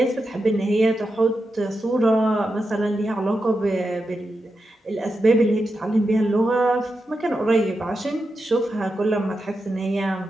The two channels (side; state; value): both; normal; correlation 0.88